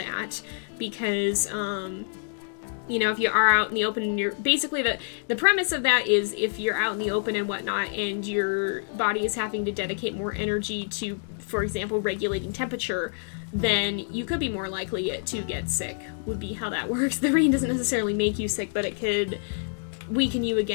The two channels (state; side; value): silent; right; digital silence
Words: because you know, if you are out in the open and you're basically the premise of that is if you're out in the open and whatnot and your body is having to dedicate more energy to, for example, regulating temperature, then you could be more likely to get sick, would be how that works. The rain doesn't necessarily make you sick, but it could weaken you